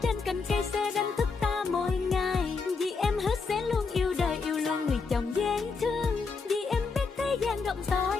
trên cành cây sẽ đánh thức ta mỗi ngày. Vì em hứa sẽ luôn yêu đời, yêu luôn người chồng dễ thương. Vì em biết thế gian rộng to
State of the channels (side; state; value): right; quieter; 4.7 dB